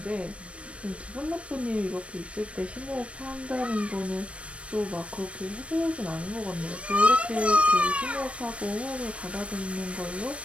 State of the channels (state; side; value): late; left; 0.062 ms